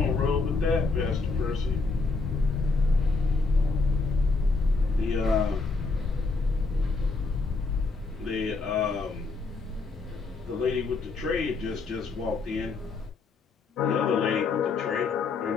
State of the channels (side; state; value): right; quieter; 4.0 dB